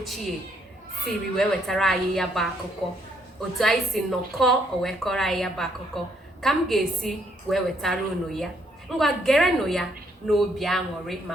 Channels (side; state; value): both; normal; correlation 0.71